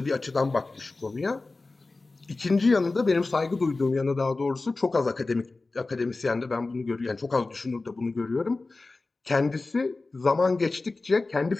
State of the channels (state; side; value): quieter; right; 3.4 dB